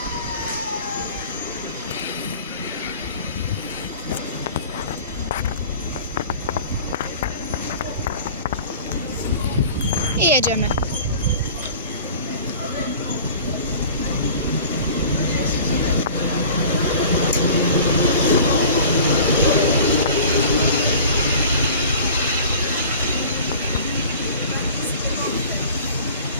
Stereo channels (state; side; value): inverted; both; correlation -0.43